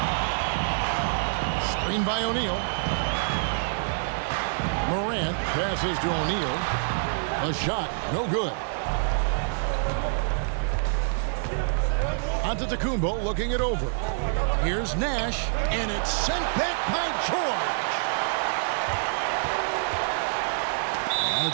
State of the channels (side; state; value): left; silent; digital silence